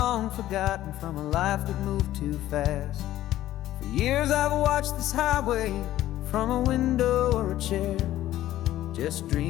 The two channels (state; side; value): quieter; right; 13.9 dB